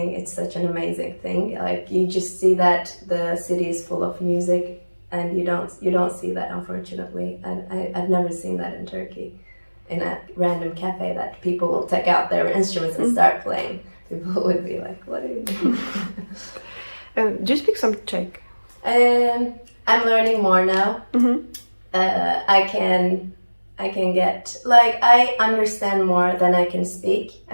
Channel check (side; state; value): both; inverted; correlation -1.00